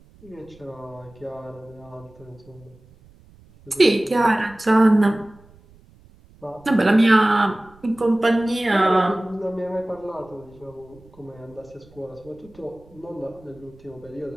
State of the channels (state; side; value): noise; right; rumble, 26 dB below the sound